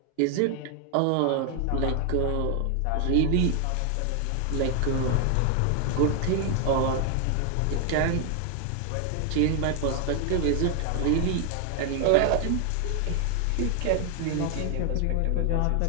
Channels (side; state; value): both; different; correlation 0.00